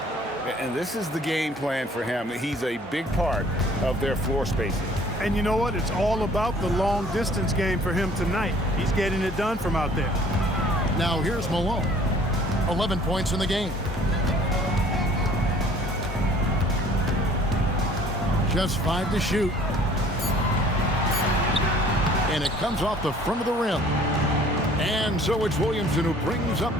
And this is the game plan for him. He's a big part of their floor spacing. And you know what? It's all about the long distance game for him tonight. He's getting it done from out there. Now here's Malone. 11 points in the game. Just 5 to shoot. And it comes off the front of the rim. And so it's Williamson who brings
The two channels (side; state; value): both; normal; correlation 0.54